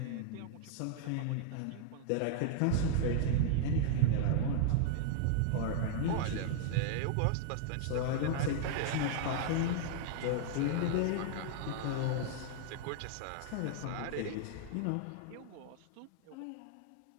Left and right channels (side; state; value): both; different; correlation -0.01